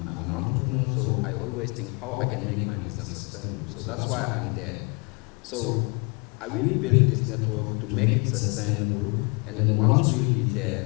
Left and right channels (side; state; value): right; quieter; 31.1 dB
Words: entrepreneur, so I always think how I can make my business sustainable. So that's why I'm there. So I will build this network to make it sustainable, and then once we'll be there,